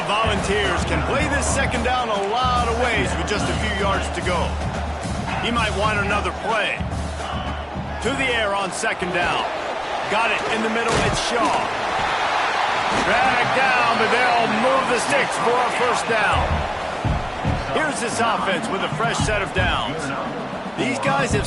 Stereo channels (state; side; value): identical; both; correlation 1.00